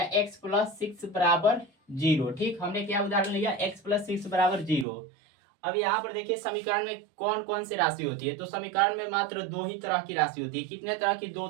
x+6 बराबर 0, ठीक। हमने क्या उदाहरण लिया, x+6 बराबर 0। अब यहाँ पर देखिए समीकरण में कौन कौन सी राशि होती है। तो समीकरण में मात्र दो ही तरह की राशि होती है। कितने तरह की, दो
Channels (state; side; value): drops out; left; at 4.9 s